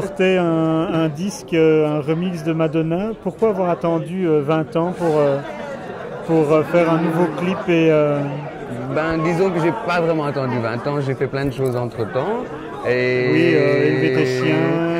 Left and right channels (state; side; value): identical; both; correlation 1.00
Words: un disque, un remix de Madonna. Pourquoi avoir attendu 20 ans pour faire un nouveau clip Disons que j'ai pas vraiment attendu 20 ans, j'ai fait plein de choses entre-temps. Oui, élever tes chiens.